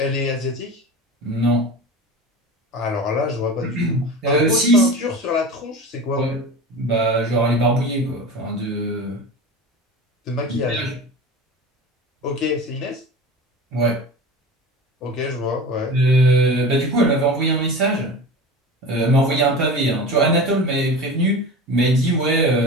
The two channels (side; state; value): both; normal; correlation 0.32